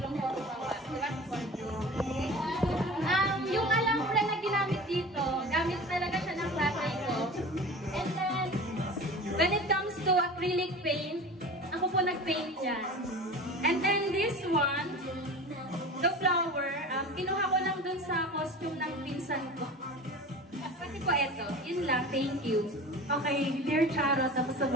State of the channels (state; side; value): normal; both; correlation 0.36